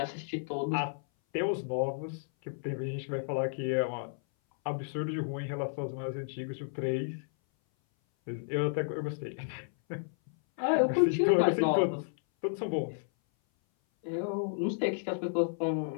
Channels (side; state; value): right; silent; 56 dB below the other